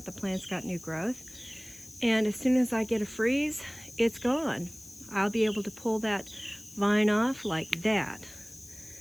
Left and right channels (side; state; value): left; noise; hiss, 20 dB below the sound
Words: The plant's got new growth. And as soon as I get a freeze, it's gone. I'll be able to pull that vine off like that.